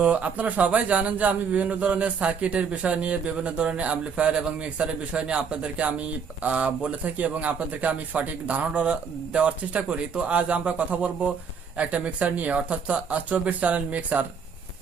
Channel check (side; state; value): left; quieter; 6.2 dB